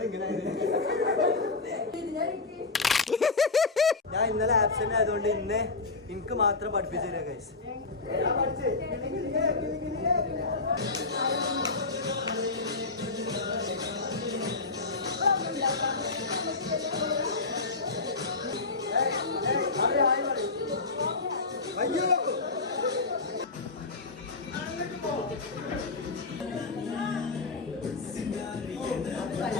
ഞാൻ ഇന്നലെ ആബ്സെന്റ് ആയതുകൊണ്ട് ഇന്ന് എനിക്ക് മാത്രം പഠിപ്പിച്ചു തരാം ഗൈസ്.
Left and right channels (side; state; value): right; quieter; 3.8 dB